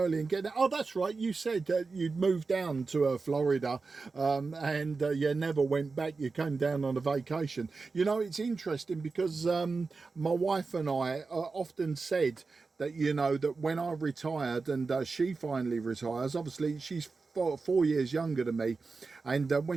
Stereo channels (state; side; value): quieter; left; 4.2 dB